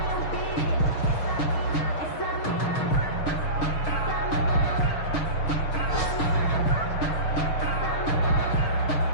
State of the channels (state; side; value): late; right; 6.4 ms